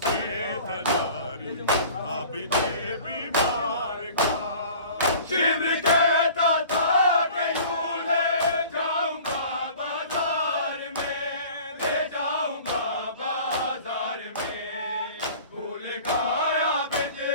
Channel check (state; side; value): inverted; both; correlation -0.45